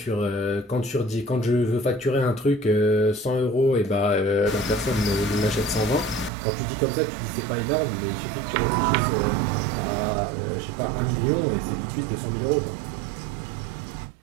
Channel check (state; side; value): drops out; left; at 6.3 s